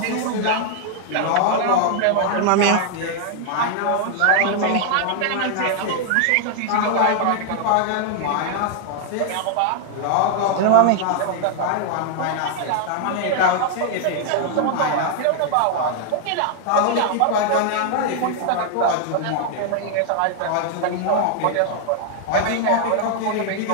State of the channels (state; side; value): different; both; correlation 0.00